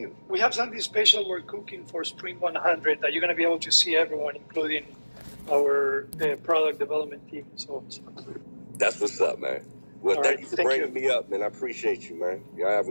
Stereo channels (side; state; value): both; inverted; correlation -1.00